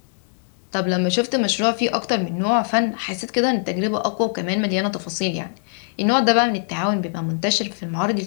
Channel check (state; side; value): silent; right; digital silence